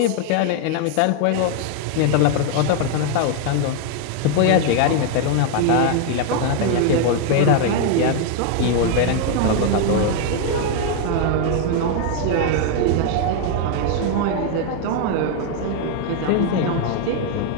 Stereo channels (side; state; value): both; different; correlation 0.00